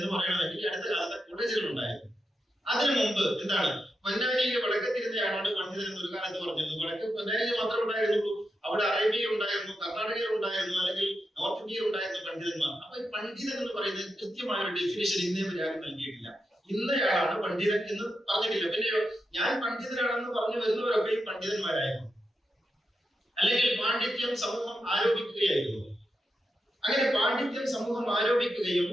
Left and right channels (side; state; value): both; normal; correlation 0.87